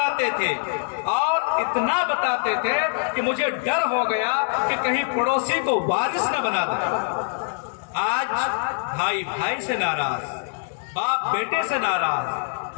تھے، اور اتنا بتاتے تھے کہ مجھے ڈر ہو گیا کہ کہیں پڑوسی کو وارث نہ بنا دے۔ آج بھائی بھائی سے ناراض، باپ بیٹے سے ناراض،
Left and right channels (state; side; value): silent; right; digital silence